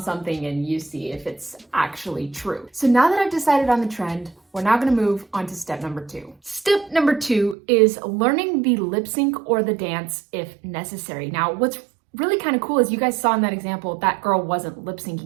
and you see if it's actually true. So now that I've decided on the trend, we're now gonna move on to step number 2. Step number 2 is learning the lip sync or the dance if necessary. Now, what's really kind of cool is you guys saw in that example, that girl wasn't lip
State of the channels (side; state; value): left; drops out; at 7.6 s